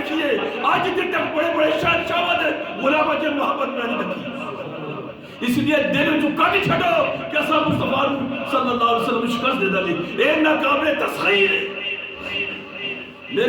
آج جتنے تک بڑے بڑے شہنشاہ والے غلام جن محبت میں نہیں دیکھی اس لیے دل چکا نہیں چھڑو کہ ایسا مصطفیٰ صلی اللہ علیہ وسلم شکست دے دلی اے ناقابل تسخیر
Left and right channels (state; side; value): identical; both; correlation 1.00